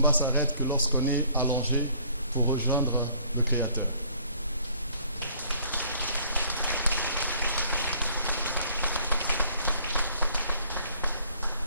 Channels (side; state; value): both; inverted; correlation -0.59